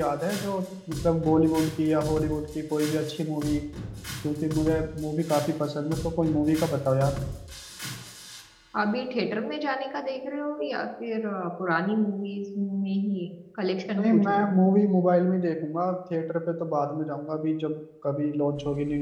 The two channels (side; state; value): both; identical; correlation 1.00